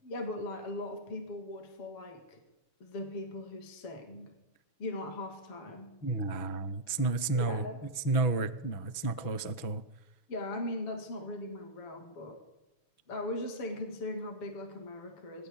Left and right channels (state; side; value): late; right; 6.2 ms